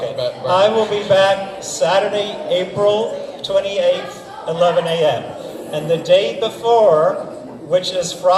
about environment. I will be back Saturday, April 28th, 11 a.m. And the day before, which is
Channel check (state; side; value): identical; both; correlation 1.00